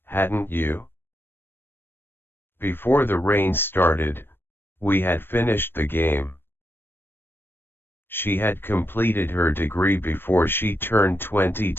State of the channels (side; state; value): right; late; 0.10 ms